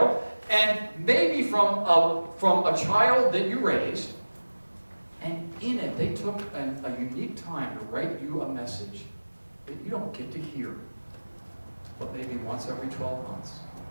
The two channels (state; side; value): inverted; both; correlation -1.00